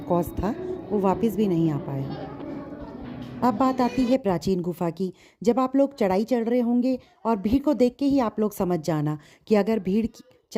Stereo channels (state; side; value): identical; both; correlation 1.00